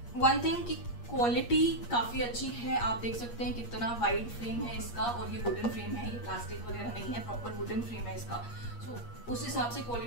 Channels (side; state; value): right; late; 8.5 ms